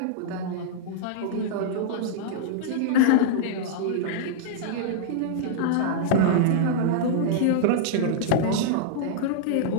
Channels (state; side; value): different; both; correlation -0.02